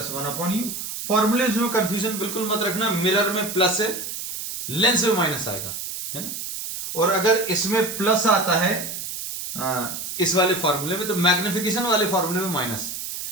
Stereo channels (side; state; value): right; noise; hiss, 6 dB below the sound